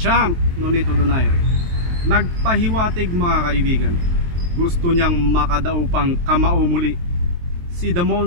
Nonito Donaire nagpahiwatig mga kaibigan. Gusto niyang makadaw pang kamao muli si The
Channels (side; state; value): left; late; 23 ms